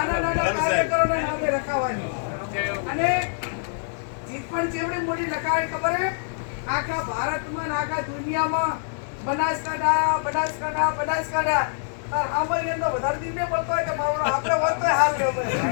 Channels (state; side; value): silent; right; digital silence